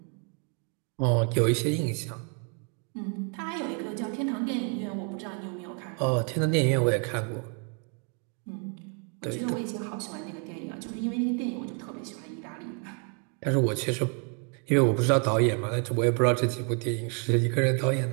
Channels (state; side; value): quieter; left; 38.6 dB